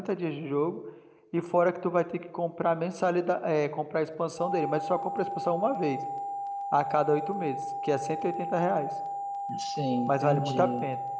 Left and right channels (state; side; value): identical; both; correlation 1.00